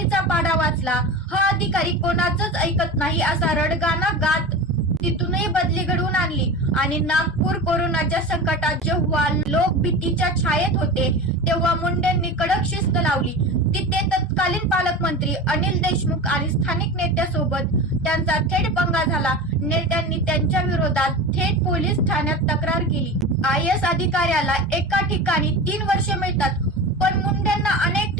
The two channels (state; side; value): normal; both; correlation 0.29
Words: पाढा वाचला. हा अधिकारी कोणाचंच ऐकत नाही असा रडगाणा गात तिथूनही बदली घडवून आणली. आणि नागपूर कोरोनाच्या संकटात जेव्हा लोक भीतीच्या छायेत होते तेव्हा मुंडेंनी कडक शिस्त लावली. तिथे तत्कालीन पालकमंत्री अनिल देशमुख आणि स्थानिक नेत्यासोबत त्यांचा थेट पंगा झाला. नेत्यांनी त्यांच्या विरोधात थेट पोलीस ठाण्यात तक्रार केली. IAS अधिकाऱ्याला एका ठिकाणी 3 वर्षे मिळतात, पण मुंडेंना अनेक